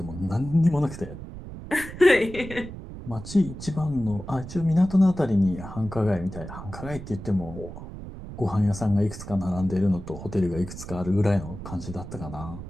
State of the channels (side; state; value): right; noise; rumble, 11 dB below the sound